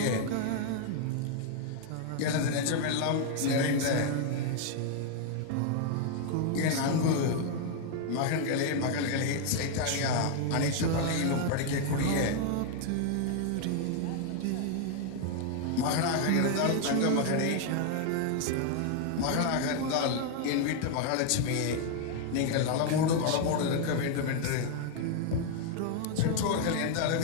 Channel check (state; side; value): different; both; correlation 0.00